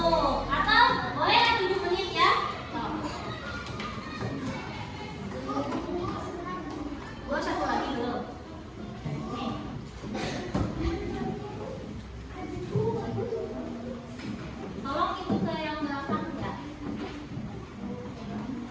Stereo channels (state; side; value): identical; both; correlation 1.00